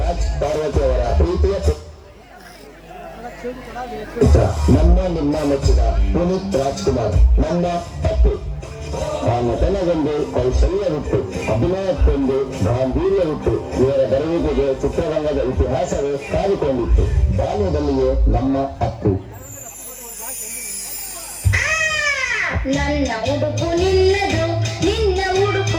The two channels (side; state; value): both; identical; correlation 1.00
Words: ಪಾರ್ವತಿ ಅವರ ಪ್ರೀತಿಯ ಪುತ್ರ ನಮ್ಮ ನಿಮ್ಮ ಮೆಚ್ಚಿದ ಪುನೀತ್ ರಾಜ್ಕುಮಾರ್ ನನ್ನ ಅಪ್ಪು. ಆ ನಟನೆಗೊಂದು ಕೌಶಲ್ಯವಿತ್ತು, ಅಭಿನಯಕ್ಕೊಂದು ಗಾಂಭೀರ್ಯವಿತ್ತು. ಇವರ ಬರುವಿಕೆಗೆ ಚಿತ್ರರಂಗದ ಇತಿಹಾಸವೇ ಕಾದುಕೊಂಡಿತ್ತು. ಬಾಲ್ಯದಲ್ಲಿಯೇ ನಮ್ಮ ಅಪ್ಪು. ನನ್ನ ಉಡುಪು ನಿನ್ನದು, ನಿನ್ನ